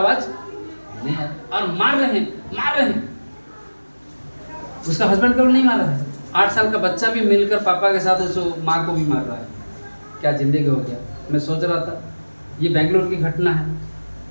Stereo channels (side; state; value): both; inverted; correlation -1.00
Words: नहीं है, और मार रहे हैं। उसका हस्बैंड को नहीं मार रहा है, 8 साल का बच्चा भी मिलकर पापा के साथ उस माँ को भी मार रहा है। क्या जिंदगी हो गया। मैं सोच रहा था ये बेंगलोर की घटना है,